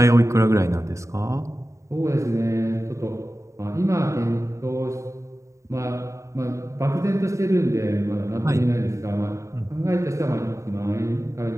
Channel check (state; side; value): late; left; 0.15 ms